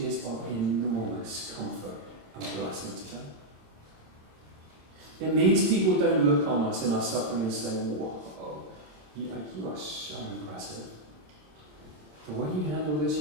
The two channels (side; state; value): left; late; 26 ms